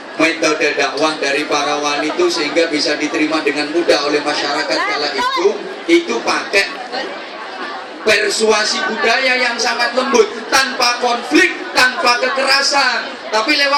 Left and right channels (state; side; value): identical; both; correlation 1.00